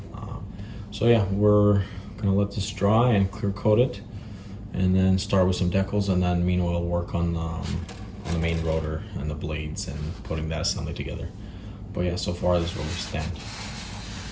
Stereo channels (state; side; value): identical; both; correlation 1.00